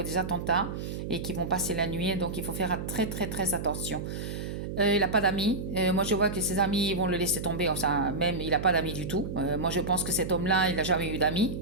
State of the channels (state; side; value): noise; right; hum, 5 dB below the sound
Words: des attentats et qui vont passer la nuit. Donc, il faut faire très, très, très attention. Il n'a pas d'amis. Moi, je vois que ses amis vont le laisser tomber. Enfin, même, il n'a pas d'amis du tout. Moi, je pense que cet homme-là, il n'a jamais eu d'amis,